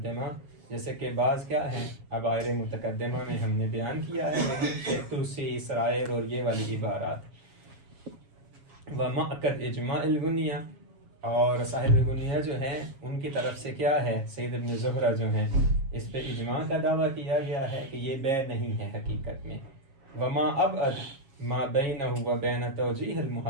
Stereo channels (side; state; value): left; late; 7.3 ms